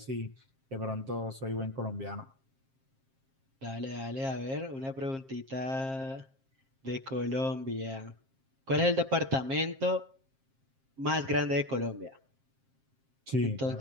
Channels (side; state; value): left; late; 7.5 ms